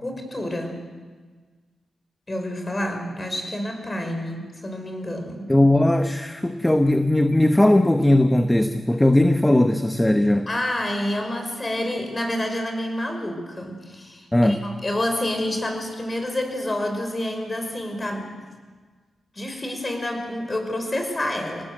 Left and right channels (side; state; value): both; normal; correlation 0.97